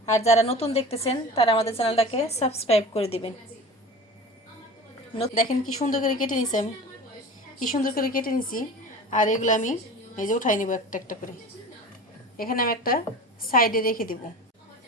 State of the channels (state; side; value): normal; both; correlation 0.36